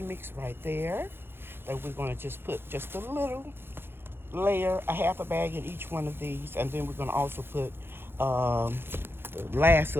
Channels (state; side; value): late; left; 0.11 ms